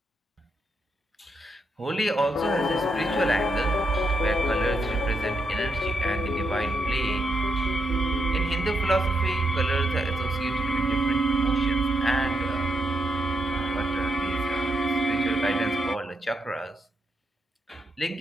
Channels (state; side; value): normal; both; correlation 0.81